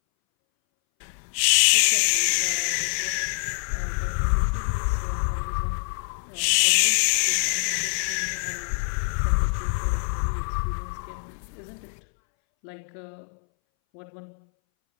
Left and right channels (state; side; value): silent; right; 62 dB below the other